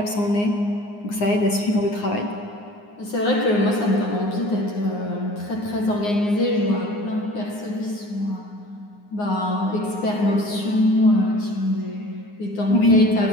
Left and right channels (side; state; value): right; late; 9.7 ms